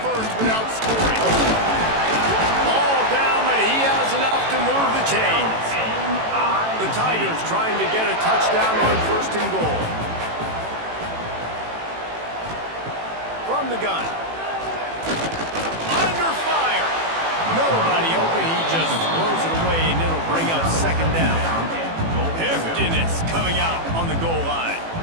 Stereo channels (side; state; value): left; late; 18 ms